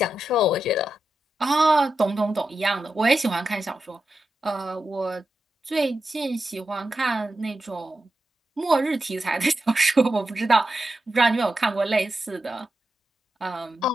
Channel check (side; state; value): both; normal; correlation 0.89